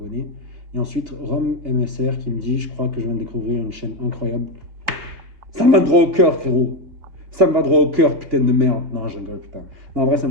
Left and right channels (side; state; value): left; late; 2.7 ms